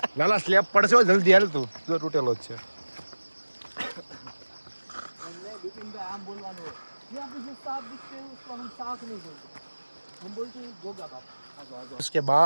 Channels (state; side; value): inverted; both; correlation -1.00